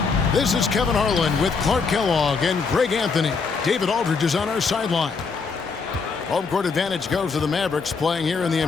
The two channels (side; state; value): right; quieter; 4.9 dB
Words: This is Kevin Harlan with Clark Kellogg and Greg Anthony. David Aldridge is on our sideline. Home court advantage goes to the Mavericks, playing here in the